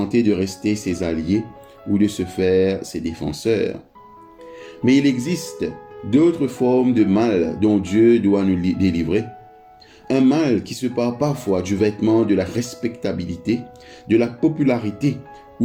de rester ses alliés ou de se faire ses défenseurs. Mais il existe d'autres formes de mal dont Dieu doit nous délivrer. Un mal qui se part parfois du vêtement de la respectabilité, de la popularité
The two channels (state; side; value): identical; both; correlation 1.00